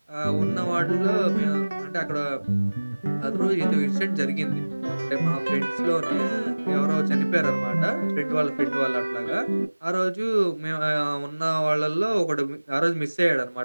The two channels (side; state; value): both; inverted; correlation -1.00